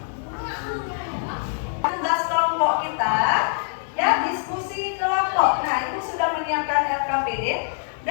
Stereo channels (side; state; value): right; silent; digital silence